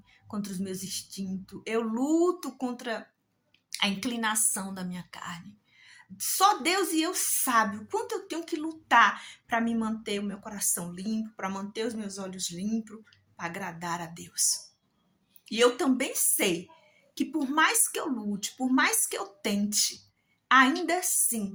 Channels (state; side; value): identical; both; correlation 1.00